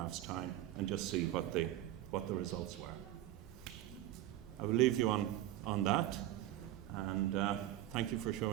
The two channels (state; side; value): quieter; left; 13.8 dB